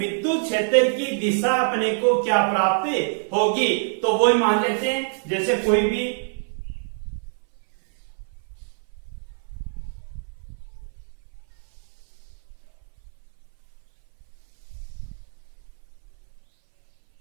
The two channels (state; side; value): silent; left; 58 dB below the other